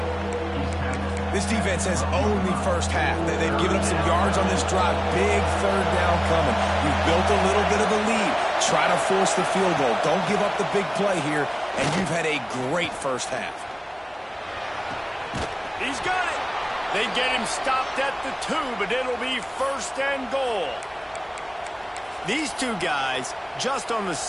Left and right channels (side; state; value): both; identical; correlation 1.00